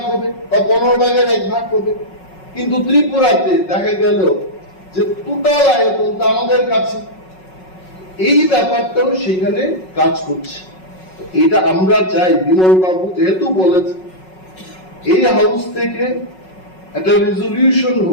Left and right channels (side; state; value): right; late; 5.4 ms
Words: হবে বা 15 ভাগের 1 ভাগ হবে, কিন্তু ত্রিপুরাতে দেখা গেল যে টোটাল আয়তনটা আমাদের কাছে, এই ব্যাপারটাও সেখানে কাজ করছে। এটা আমরা চাই বিমল বাবু যেহেতু বলেছে, এই হাউস থেকে একটা রেজলিউশন